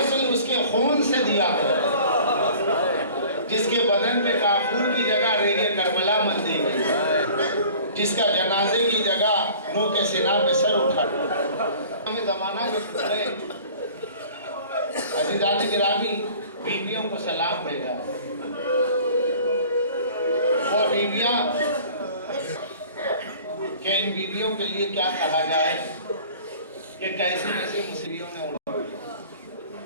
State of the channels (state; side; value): inverted; both; correlation -0.47